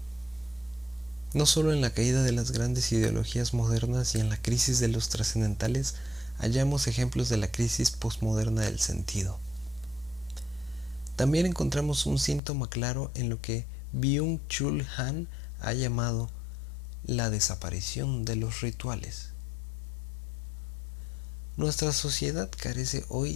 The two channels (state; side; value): drops out; right; at 12.4 s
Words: No solo en la caída de las grandes ideologías modernas y en la crisis de los trascendentales hallamos ejemplos de la crisis posmoderna del sentido. También encontramos un síntoma claro en lo que Byung-Chul Han ha llamado la desaparición de los rituales. Nuestra sociedad carece